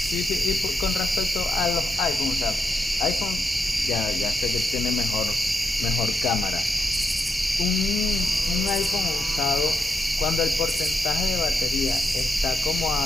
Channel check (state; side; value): normal; both; correlation 0.84